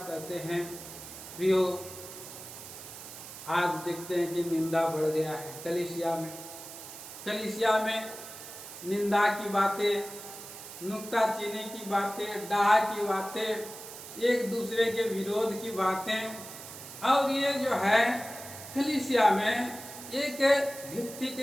हैं प्रियो, आज देखते हैं कि निंदा बढ़ गया है कलीसिया में। कलीसिया में निंदा की बातें, नुक्ताचीनी की बातें, डाह की बातें, एक दूसरे के विरोध की बातें, और ये जो है कलीसिया में एक व्यक्ति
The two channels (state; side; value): noise; right; hiss, 13 dB below the sound